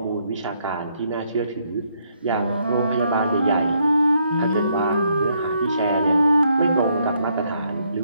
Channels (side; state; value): both; inverted; correlation -0.73